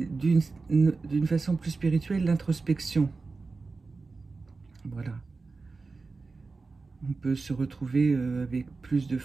d'une façon plus spirituelle, l'introspection. Voilà. On peut se retrouver avec plus de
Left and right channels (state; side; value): quieter; left; 4.0 dB